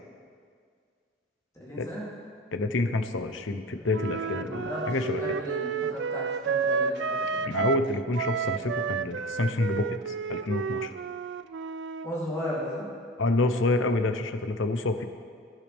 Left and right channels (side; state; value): both; normal; correlation 0.32